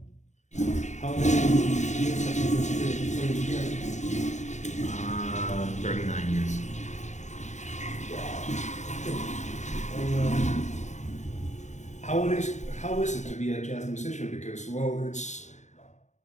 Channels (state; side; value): late; right; 0.34 ms